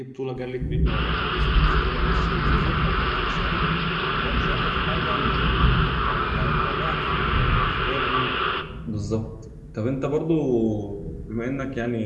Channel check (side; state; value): both; identical; correlation 1.00